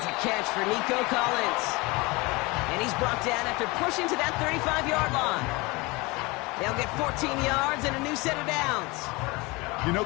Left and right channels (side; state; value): right; quieter; 24.6 dB